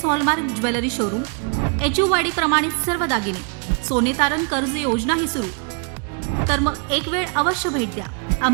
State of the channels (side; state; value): left; quieter; 39.8 dB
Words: hallmark jewellery showroom, HUID प्रमाणित सर्व दागिने, सोने तारण कर्ज योजनाही सुरू. तर मग एक वेळ अवश्य भेट द्या.